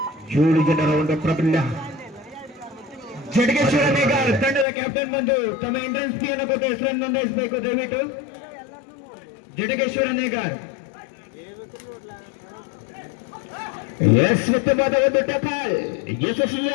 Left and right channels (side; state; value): right; drops out; at 4.7 s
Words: 7 ಜನರ ಒಂದು ಪ್ರಾಬಲ್ಯ. ಜಡಗೇಶ್ವರ ನೇಗಾರ್ ತಂಡದ ಕ್ಯಾಪ್ಟನ್ ಬಂದು ತಮ್ಮ ಎಂಟ್ರೆನ್ಸ್ ಫೀಯನ್ನು ಕೊಟ್ಟು ಹೆಸರನ್ನು ನೋಂದಾಯಿಸಬೇಕು ದಯವಿಟ್ಟು. ಜಡಗೇಶ್ವರ ನೇಗಾರ್ ಉತ್ತಮವಾದ ಒಂದು ಟಕಾಲ್,